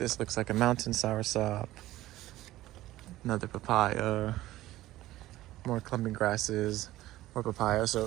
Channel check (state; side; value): quieter; left; 15.9 dB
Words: looks like a mountain soursop. Another papaya, more clumping grasses, more papaya.